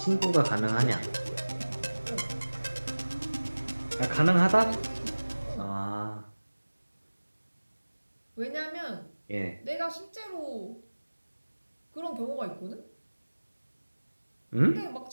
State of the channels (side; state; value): both; inverted; correlation -1.00